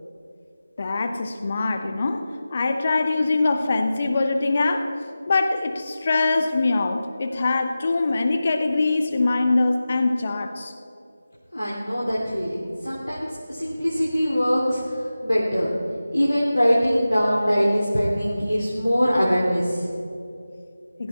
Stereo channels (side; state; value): both; inverted; correlation -0.95